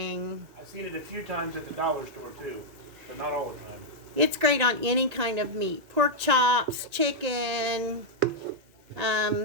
I've seen it a few times at the dollar store too, but not all the time. It's great on any kind of meat. Pork chops, chicken,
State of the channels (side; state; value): left; late; 1.9 ms